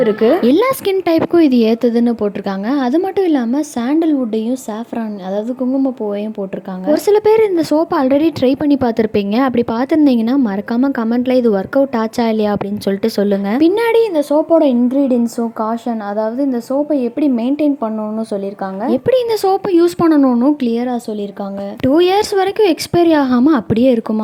இருக்கு. எல்லா ஸ்கின் டைப்புக்கும் இது ஏத்துதுன்னு போட்டிருக்காங்க. அது மட்டும் இல்லாம சாண்டல்வுட்டையும் சாஃப்ரான் அதாவது குங்குமப்பூவையும் போட்டிருக்காங்க. ஒரு சில பேர் இந்த சோப்பை ஆல்ரெடி ட்ரை பண்ணி பார்த்துருப்பீங்க. அப்படி பார்த்துருந்தீங்கன்னா மறக்காம கமெண்ட்ல இது ஒர்க் அவுட் ஆச்சா இல்லையா அப்படின்னு சொல்லிட்டு சொல்லுங்க. பின்னாடி இந்த சோப்போட இன்கிரீடியன்ஸும் காஷன், அதாவது இந்த சோப்பை எப்படி மெயின்டைன் பண்ணணும்னு சொல்லியிருக்காங்க, எப்படி இந்த சோப்பை யூஸ் பண்ணணும்னு கிளியரா சொல்லியிருக்காங்க. 2 இயர்ஸ் வரைக்கும் எக்ஸ்பைரி ஆகாம அப்படியே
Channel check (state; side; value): identical; both; correlation 1.00